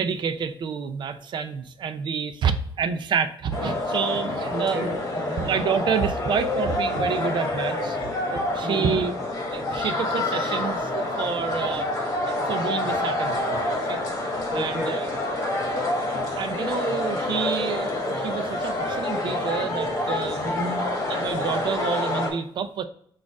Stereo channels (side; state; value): both; normal; correlation 0.44